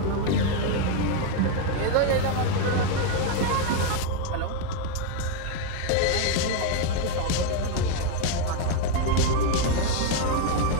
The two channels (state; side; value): different; both; correlation 0.01